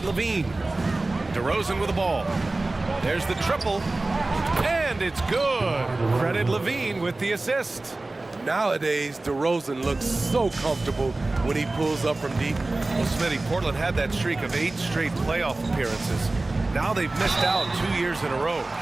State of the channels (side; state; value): left; quieter; 3.0 dB